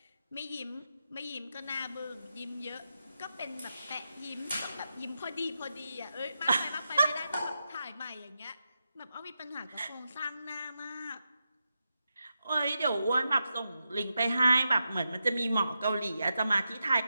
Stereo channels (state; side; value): inverted; both; correlation -0.88